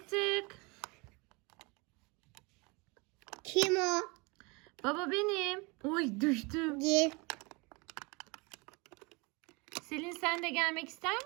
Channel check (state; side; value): quieter; left; 28.0 dB